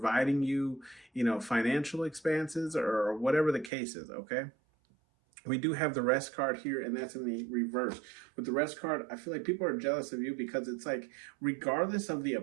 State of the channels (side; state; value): left; drops out; at 3.7 s